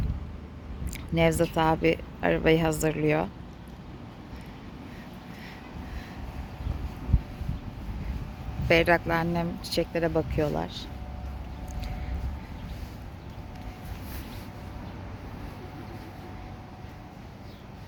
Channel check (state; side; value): identical; both; correlation 1.00